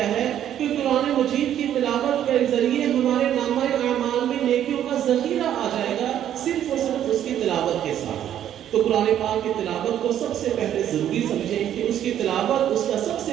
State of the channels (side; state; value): left; quieter; 10.7 dB